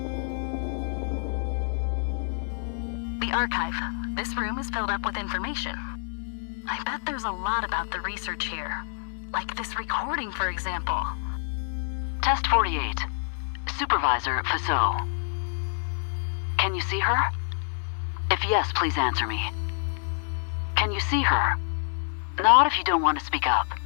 Archive. This room is filled up with information. I bet there's a lot about the research here. Like this recording, for example. Test 48. Supervisor Faso. Can you see her? If yes, please answer me. Can you see her? Not if you don't want to speak up.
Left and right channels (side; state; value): right; silent; 60 dB below the other